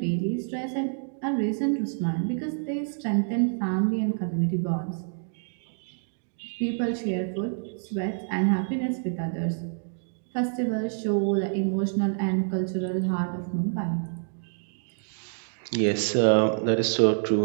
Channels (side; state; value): left; silent; digital silence